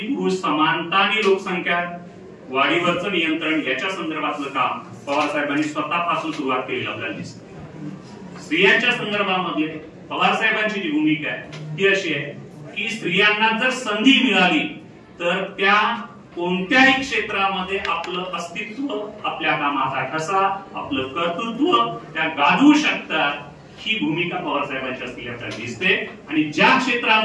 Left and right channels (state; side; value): identical; both; correlation 1.00